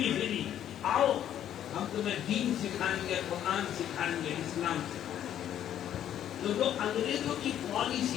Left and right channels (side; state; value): right; quieter; 10.7 dB